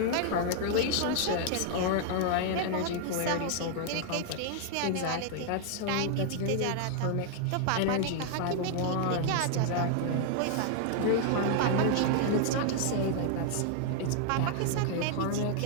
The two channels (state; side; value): different; both; correlation 0.00